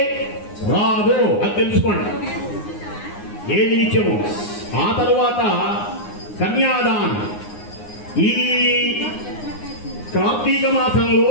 రాదు, అది తెలుసుకోండి. ఏది నిత్యము. ఆ తరువాత కన్యాదానం. ఈ కార్తీక మాసంలో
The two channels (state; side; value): late; right; 9.7 ms